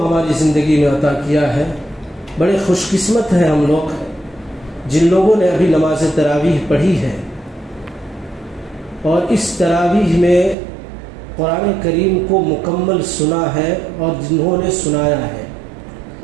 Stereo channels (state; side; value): drops out; left; at 10.6 s